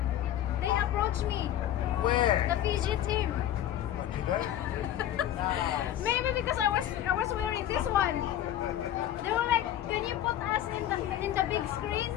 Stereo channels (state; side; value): quieter; right; 11.8 dB